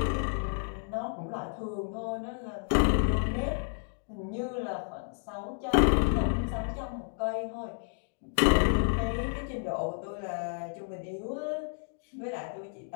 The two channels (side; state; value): right; silent; digital silence